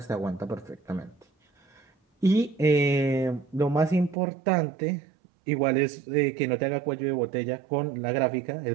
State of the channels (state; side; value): drops out; left; at 4.2 s